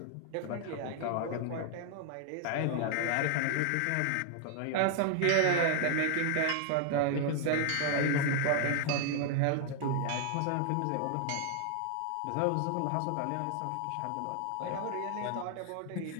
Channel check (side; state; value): both; different; correlation 0.00